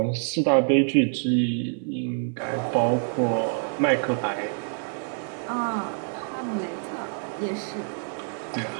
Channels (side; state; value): left; silent; 57 dB below the other